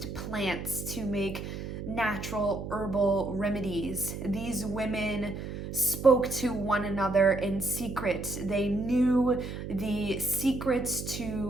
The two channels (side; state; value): right; noise; hum, 7 dB below the sound